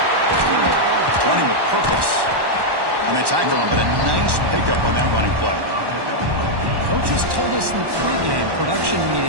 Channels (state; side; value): late; left; 1.1 ms